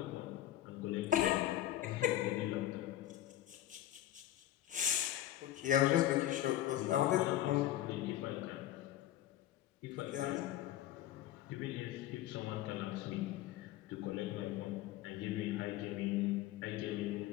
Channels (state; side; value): quieter; right; 13.4 dB